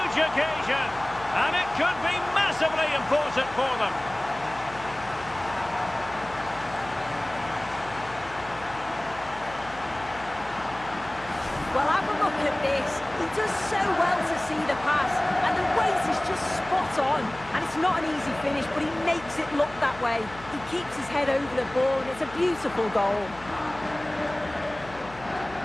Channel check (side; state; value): left; noise; hum, 18 dB below the sound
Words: occasion. And it could be massively important for them. Well, have a look at this. He does so well to see the pass, and the weight is just spot on. And it's not an easy finish, but he makes it look that way. He keeps his head over the ball, and it's a beautiful goal.